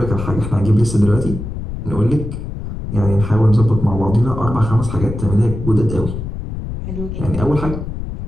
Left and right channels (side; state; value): left; noise; rumble, 7 dB below the sound